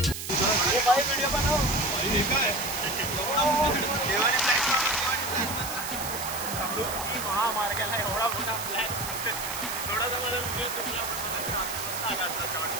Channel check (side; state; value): right; noise; hiss, 7 dB below the sound